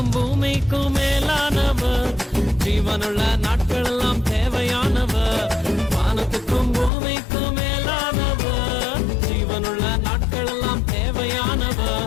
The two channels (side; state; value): right; drops out; at 6.9 s